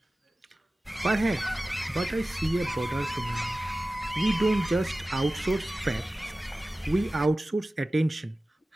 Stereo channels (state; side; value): normal; both; correlation 0.96